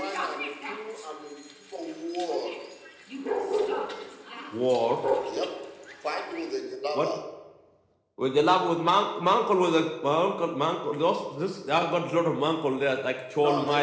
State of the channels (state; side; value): identical; both; correlation 1.00